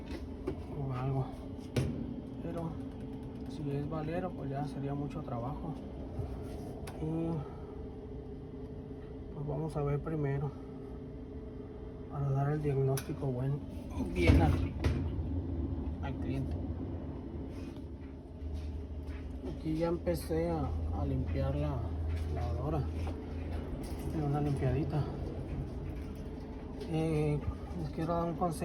o algo. Pero si es valero, pues ya sería mucho trabajo, y pues vamos a ver primero para dar el diagnóstico bien al cliente. Aquí ya empecé a limpiar la lavadora, una limpiadita. Les quiero dar un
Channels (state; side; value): identical; both; correlation 1.00